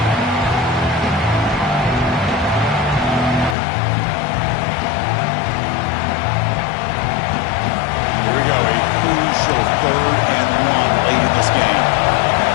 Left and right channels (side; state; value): right; drops out; at 3.6 s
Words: Here we go, a crucial 3rd and 1 late in this game.